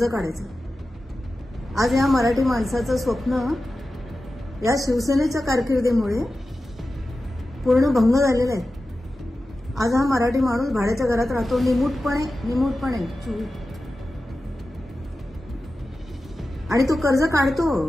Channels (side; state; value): both; normal; correlation 0.94